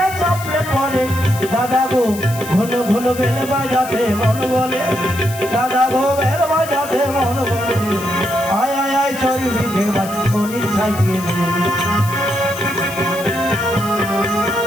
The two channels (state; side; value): noise; left; hiss, 14 dB below the sound